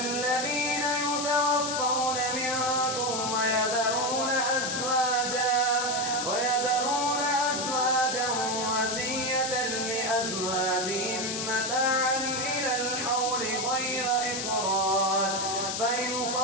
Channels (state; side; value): noise; left; hiss, 3 dB below the sound